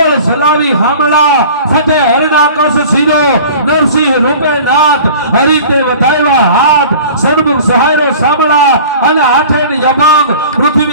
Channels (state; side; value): inverted; both; correlation -0.43